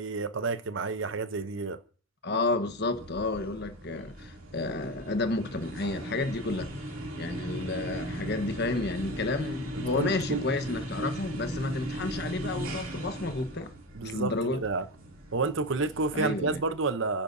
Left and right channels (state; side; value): normal; both; correlation 0.20